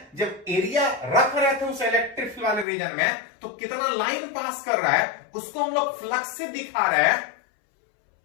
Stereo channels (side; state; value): right; drops out; at 2.7 s